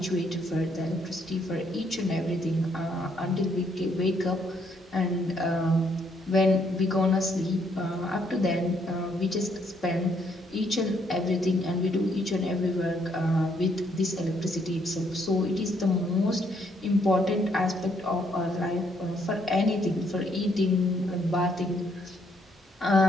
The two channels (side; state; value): both; normal; correlation 0.71